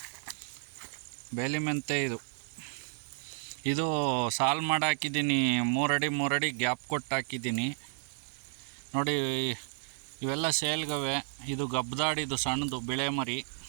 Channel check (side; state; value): left; silent; 55 dB below the other